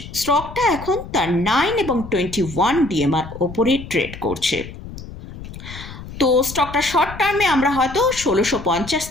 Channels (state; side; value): noise; left; rumble, 13 dB below the sound